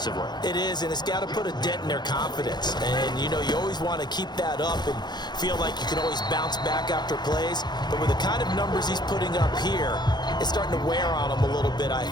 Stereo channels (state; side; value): late; right; 0.21 ms